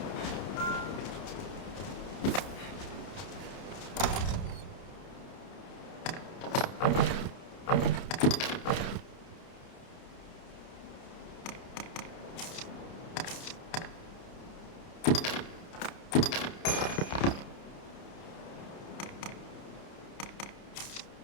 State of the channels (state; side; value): late; right; 30 ms